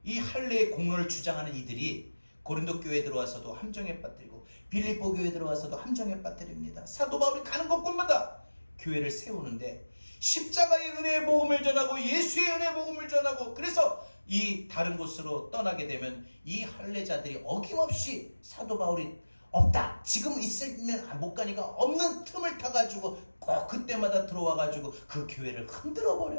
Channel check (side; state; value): both; inverted; correlation -1.00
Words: 이 할례의 공로를 주장하는 이들이 고린도 교회에 들어와서도 함정에 빠뜨리고 빌립보 교회에 들어와서도 함정에 빠뜨립니다. 사도 바울이 가는 곳곳마다 교회를 세우는데 십자가의 은혜의 복음을 전하고 예수의 은혜의 복음을 전하고, 그래서 이 다른 곳으로 떠나게 되면 이 할례자들이 어김없이 사도 바울이 없다, 지금 있으면 못 가니까 없는 틈을 타가지고 꼭 그때마다 들어와가지고 그 교회를 흔들어